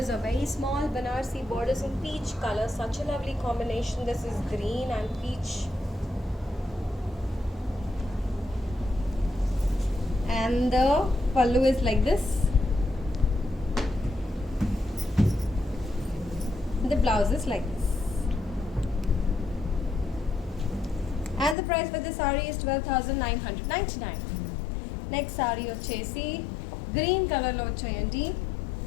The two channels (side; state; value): right; drops out; at 21.6 s